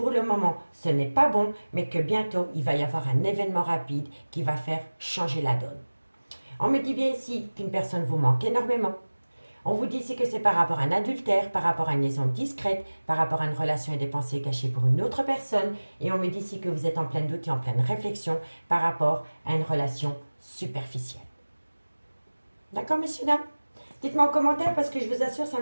le moment, ce n'est pas bon, mais que bientôt, il va y avoir un événement rapide qui va faire changer la donne. On me dit bien ici qu'une personne vous manque énormément. On vous dit ici que c'est par rapport à un adultère, par rapport à une liaison discrète, par rapport à une relation et des pensées cachées pour une autre personne. Et on me dit ici que vous êtes en plein doute et en pleine réflexion par rapport à une relation superficielle. D'accord, messieurs, dames? Dites-moi en commentaire parce que je vous assure, ça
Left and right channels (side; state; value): both; inverted; correlation -1.00